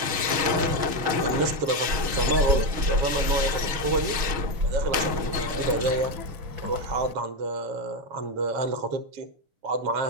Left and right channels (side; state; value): left; late; 6.4 ms